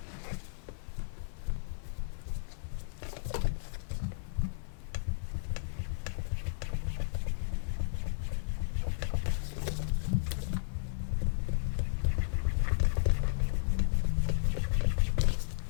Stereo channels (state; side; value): silent; right; 55 dB below the other